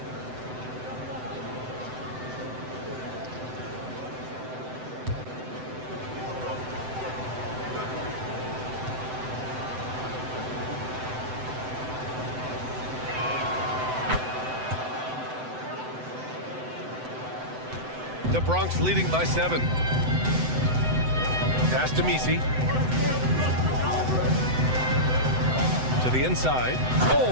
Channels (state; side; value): late; left; 7.9 ms